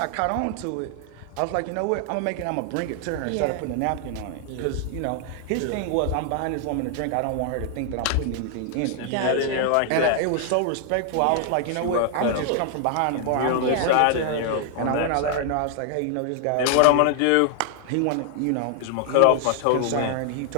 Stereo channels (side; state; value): both; different; correlation 0.00